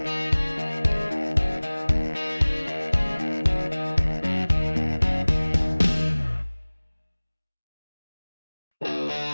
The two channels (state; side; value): inverted; both; correlation -1.00